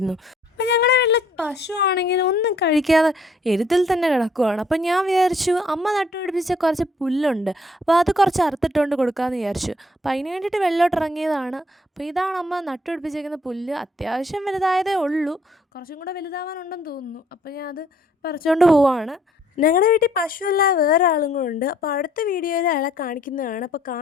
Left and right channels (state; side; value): normal; both; correlation 0.63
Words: അപ്പം ഞങ്ങളുടെ വീട്ടിൽ പശു ആണെങ്കിൽ ഒന്നും കഴിക്കാതെ എരുത്തിൽ തന്നെ കിടക്കുവാണ്. അപ്പം ഞാൻ വിചാരിച്ചു അമ്മ നട്ടുപിടിപ്പിച്ച കുറച്ച് പുല്ലുണ്ട്, അപ്പോൾ അത് കുറച്ച് അറുത്തിട്ടുകൊണ്ട് കൊടുക്കാമെന്ന് വിചാരിച്ചു. അപ്പോൾ അതിന് വേണ്ടിയിട്ട് വെള്ളോട്ടിറങ്ങിയതാണ്. അപ്പോൾ ഇതാണ് അമ്മ നട്ടുപിടിപ്പിച്ചേക്കുന്ന പുല്ല്. അത്യാവശ്യം വലുതായതേ ഉള്ളൂ, കുറച്ചും കൂടെ വലുതാവാനുണ്ടെന്ന് തോന്നുന്നു. അപ്പോൾ ഞാൻ അത് പറിച്ചുകൊണ്ട് പോവാണ്. ഞങ്ങളുടെ വീട്ടിൽ പശുവല്ല, വേറെ ആളും കൂടെ ഉണ്ട്. അപ്പോൾ അടുത്ത വീഡിയോയിൽ അയാളെ കാണിക്കുന്നതാണ്. അപ്പോൾ